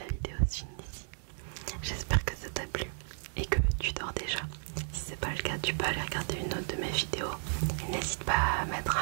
vidéo se finit ici. J'espère que ça t'a plu et que tu dors déjà. Si c'est pas le cas, tu peux aller regarder une autre de mes vidéos. Et n'hésite pas à mettre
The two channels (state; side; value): silent; left; 55 dB below the other